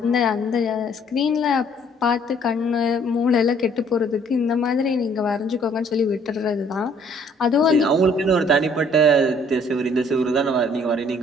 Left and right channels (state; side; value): normal; both; correlation 0.61